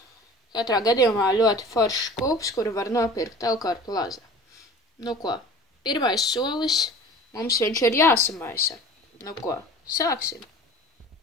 Katrā gadījumā ļoti foršs skūps, kuru var nopirkt Elkar Plaza. Nu ko, pirmais solis. Mums viņš ir jāsamaisa. Nu ko, sāksim.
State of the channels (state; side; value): normal; both; correlation 0.41